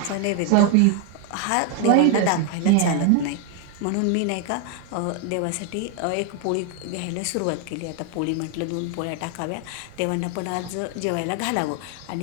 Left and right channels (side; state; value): both; different; correlation 0.00